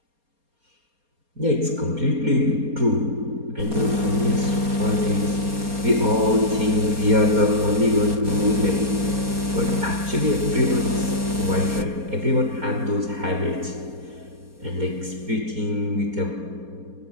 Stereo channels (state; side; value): late; left; 4.3 ms